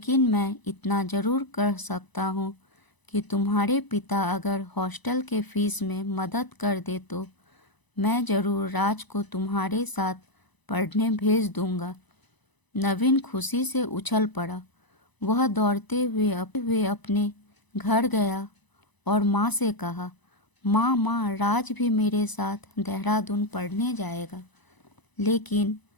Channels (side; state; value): right; late; 1.0 ms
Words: मैं इतना ज़रूर कर सकता हूँ कि तुम्हारे पिता अगर हॉस्टल के फीस में मदद कर दे तो मैं ज़रूर राज को तुम्हारे साथ पढ़ने भेज दूँगा। नवीन खुशी से उछल पड़ा। वह दौड़ते हुए अपने घर गया और माँ से कहा, माँ, राज भी मेरे साथ देहरादून पढ़ने जाएगा, लेकिन